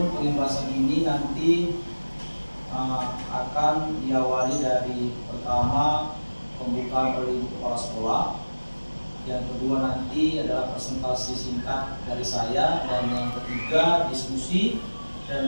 pengimbasan ini nanti akan diawali dari pertama pembukaan oleh kepala sekolah, yang kedua nanti adalah presentasi singkat dari saya, dan yang ketiga diskusi,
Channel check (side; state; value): both; inverted; correlation -1.00